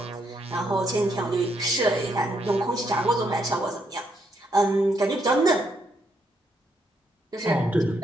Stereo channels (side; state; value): both; normal; correlation 0.75